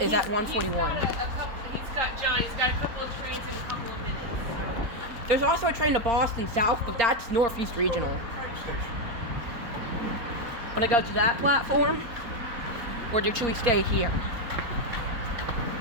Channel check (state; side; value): late; left; 4.0 ms